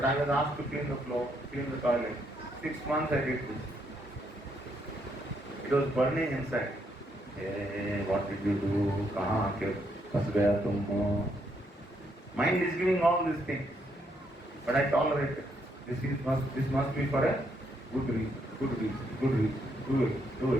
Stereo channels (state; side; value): normal; both; correlation 0.75